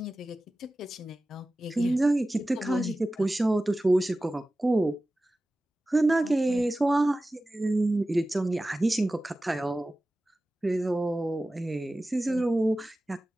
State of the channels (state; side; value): normal; both; correlation 0.96